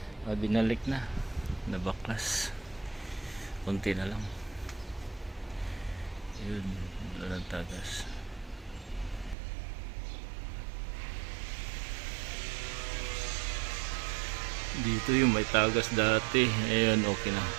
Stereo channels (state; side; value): drops out; left; at 9.3 s